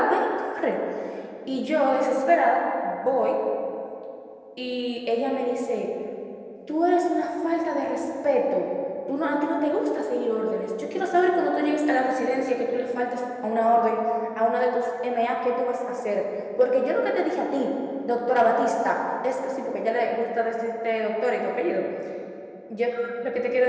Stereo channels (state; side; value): identical; both; correlation 1.00